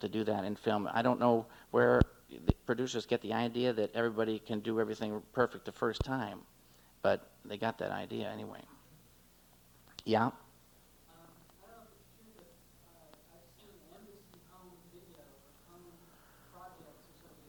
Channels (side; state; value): both; identical; correlation 1.00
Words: do that in film. I don't know where the producers get the idea that everybody can do everything perfect the first time, but they got that idea anyway. Yeah?